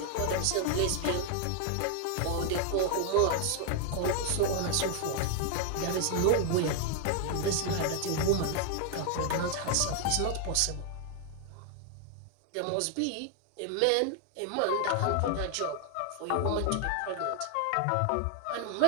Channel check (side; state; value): both; different; correlation 0.00